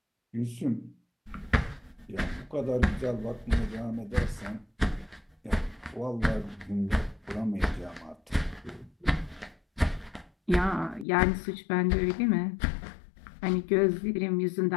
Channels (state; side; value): drops out; right; at 11.1 s